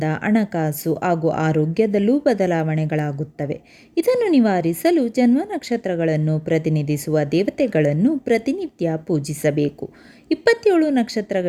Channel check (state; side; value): identical; both; correlation 1.00